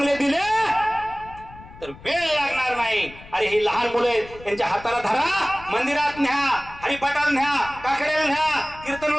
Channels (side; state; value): left; noise; rumble, 19 dB below the sound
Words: दिले तर वेळ लागणार नाही. अरे ही लहान मुलं आहेत, त्यांच्या हाताला धरा, मंदिरात न्या, हरिपाठाला न्या, काकड्याला न्या,